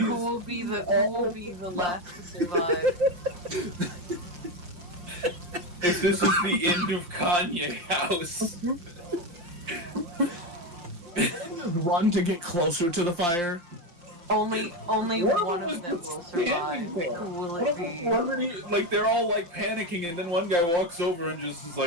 will be the last to survive? If this is the end of Kanye House. Run to get closer to the fire. Only What one was of them will standing survive. there? Who will What it if be? like they're all like panicking, and then one guy walks over and just is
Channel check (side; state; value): left; late; 5.8 ms